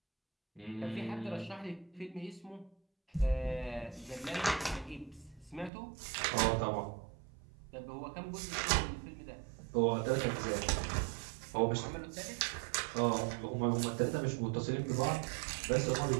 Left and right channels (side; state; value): left; drops out; at 5.7 s